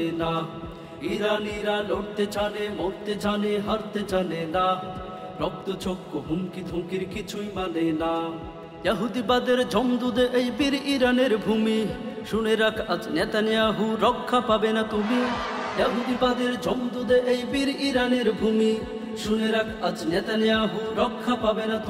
না। ইরানিরা লড়তে জানে, মরতে জানে, হারতে জানে না। রক্ত চক্ষু হুমকি ধুমকির কিছুই মানে না। ইহুদিবাদের জমদুদে এই বীর ইরানের ভূমি, শুনে রাখ আজ নেতানিয়াহু, রক্ষা পাবে না তুমি। ইহুদিবাদের জমদুদে এই বীর ইরানের ভূমি, শুনে রাখ আজ নেতানিয়াহু, রক্ষা পাবে না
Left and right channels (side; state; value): both; identical; correlation 1.00